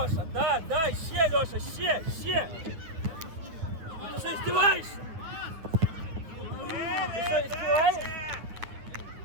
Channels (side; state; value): left; late; 9.6 ms